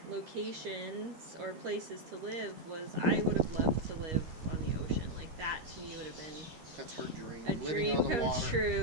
locations or places to live was I would have loved to live on the ocean. Like, that to me would have been That's her dream. a Living dream on the come water.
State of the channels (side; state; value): left; late; 13 ms